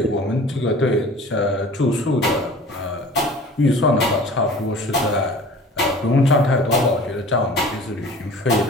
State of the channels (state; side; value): normal; both; correlation 0.44